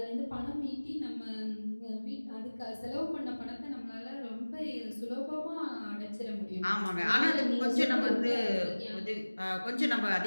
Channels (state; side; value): inverted; both; correlation -1.00